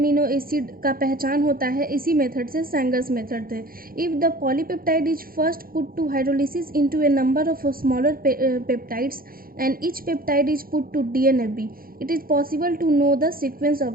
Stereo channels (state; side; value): late; left; 0.42 ms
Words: एसिड का पहचान होता है इसी मेथड से, सैंगर्स मेथड से। If the polypeptide is first put to hydrolysis into a number of smaller peptides and each peptide is put to DNFB, it is possible to know the sequence